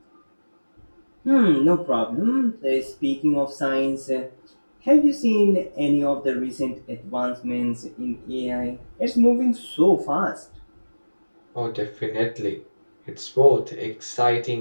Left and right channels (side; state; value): both; inverted; correlation -1.00